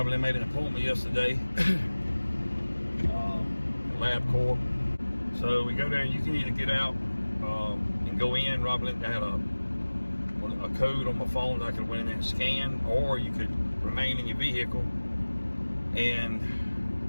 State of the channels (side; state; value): both; inverted; correlation -1.00